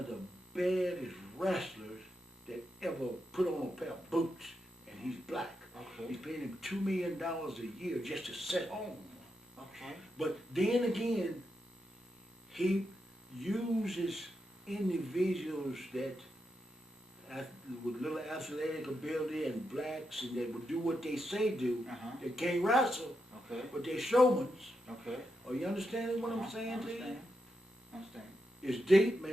the baddest wrestlers that ever put on a pair of boots, and he's black. Okay. He's paying him $2 million a year just to sit home. Okay. But then again, he uses individuals that with little athletic ability and blacks, and that would do what they say do. Uh-huh. They can't wrestle, Okay. but they're showmans. Okay. Are you understanding what I'm saying to you? Understand. It's deep,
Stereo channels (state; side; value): normal; both; correlation 0.85